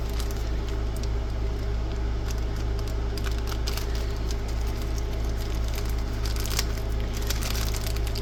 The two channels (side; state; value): both; identical; correlation 1.00